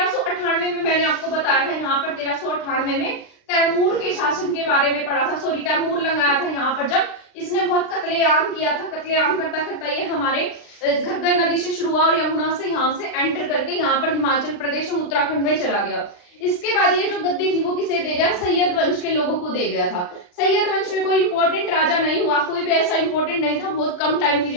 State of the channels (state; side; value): late; right; 39 ms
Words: में मैंने आपको बताया था, यहाँ पर 1398 में तैमूर के शासन के बारे में पढ़ा था। सॉरी, तैमूर लगाया था यहाँ पर, जब इसने बहुत कत्लेआम किया था। कत्लेआम करता करता ये हमारे घग्गर नदी से शुरू हुआ और यमुना से यहाँ से एंटर करके यहाँ पर हिमाचल प्रदेश और उत्तराखंड में चला गया। इसके बाद ये जो गद्दी थी वो किसे दे गया, सैयद वंश के लोगों को दे गया था। सैयद वंश में कोई इंपॉर्टेंट राजा नहीं हुआ, कोई भी ऐसा इंपॉर्टेंट नहीं था, बहुत कम टाइम